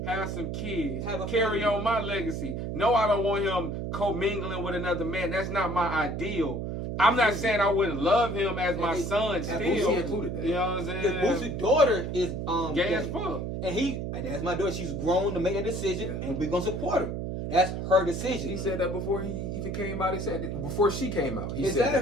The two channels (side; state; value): right; noise; hum, 4 dB below the sound